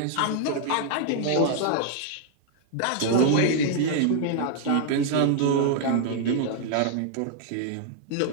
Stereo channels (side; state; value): both; different; correlation 0.00